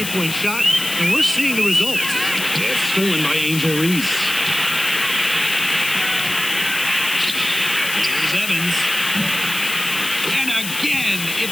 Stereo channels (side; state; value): left; noise; hiss, 6 dB below the sound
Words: shot, and we're seeing the results. It's stolen by Angel Reese. Here's Evans. And again,